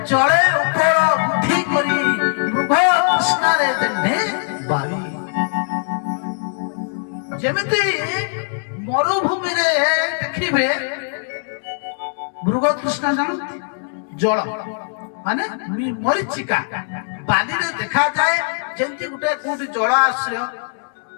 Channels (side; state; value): right; silent; digital silence